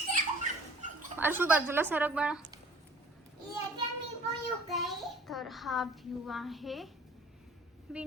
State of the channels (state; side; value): normal; both; correlation 0.50